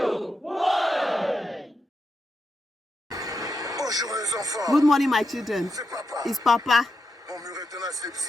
Bonjour les enfants. Good morning, my children. C'est papa. It's Papa. Mon mur est tenace, le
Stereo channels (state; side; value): normal; both; correlation 0.86